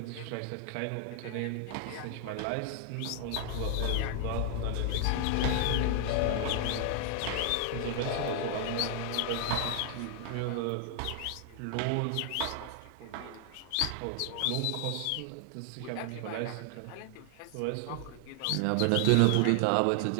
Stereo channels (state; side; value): different; both; correlation 0.00